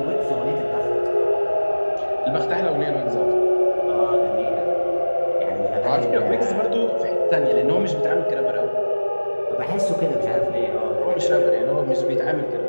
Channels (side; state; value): both; inverted; correlation -1.00